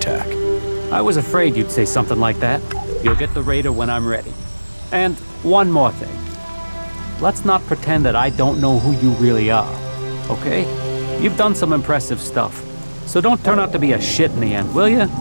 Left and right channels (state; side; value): inverted; both; correlation -1.00